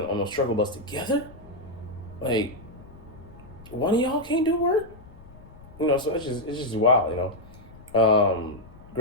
on those struggle bus together? Like, one of y'all can't do work? So it's just wild,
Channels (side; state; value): left; noise; rumble, 20 dB below the sound